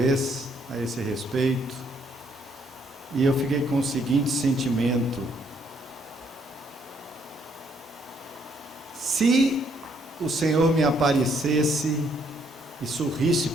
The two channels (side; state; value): both; normal; correlation 0.69